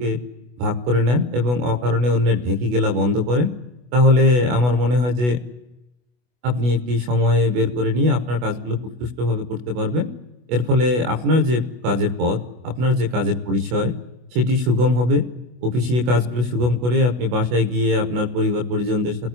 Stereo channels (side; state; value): left; late; 24 ms